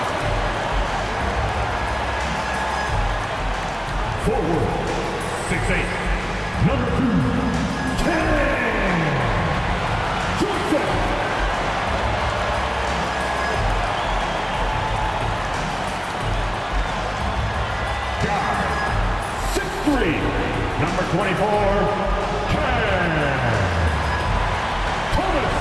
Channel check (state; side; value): identical; both; correlation 1.00